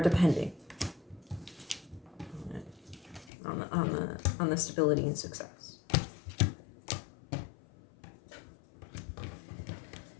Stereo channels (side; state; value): right; drops out; at 3.3 s